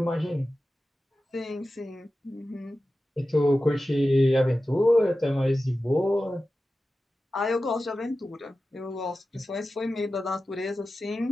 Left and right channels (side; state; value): both; normal; correlation 0.94